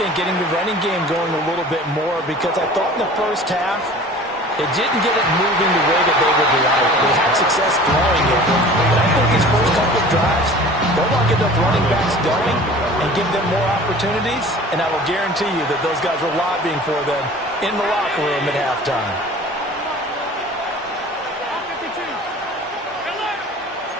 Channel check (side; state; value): both; normal; correlation 0.43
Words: think getting the running game going a little bit more, because I thought in the first half it didn't get it moving the way that they would like. They had success throwing it. But I think these first couple of drives, they'll want to get those running backs going and give them more opportunities. And I will guarantee you that those guys were lobbying for them in the locker room at halftime.